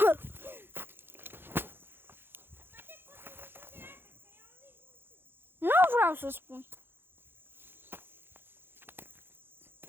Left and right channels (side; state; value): left; late; 0.10 ms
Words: Nu vreau să spun.